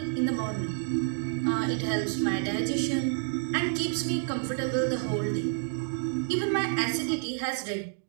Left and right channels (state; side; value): silent; left; digital silence